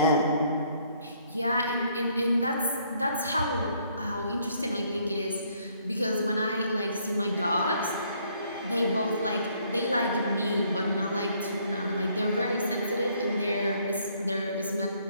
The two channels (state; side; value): inverted; both; correlation -0.66